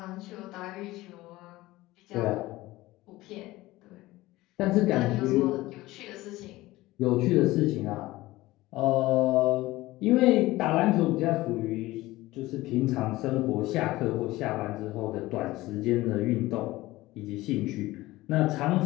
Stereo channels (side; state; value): right; quieter; 18.3 dB